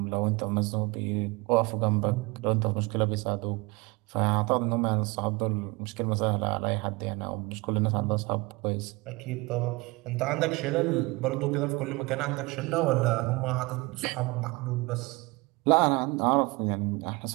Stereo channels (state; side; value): quieter; left; 25.1 dB